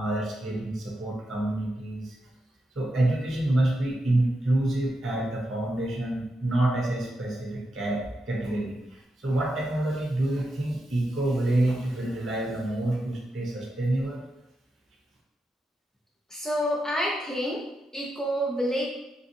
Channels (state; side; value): normal; both; correlation 0.86